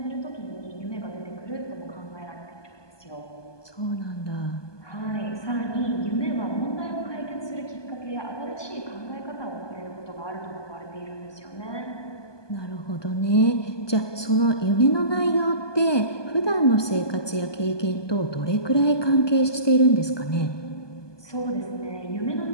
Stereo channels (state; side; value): late; right; 1.2 ms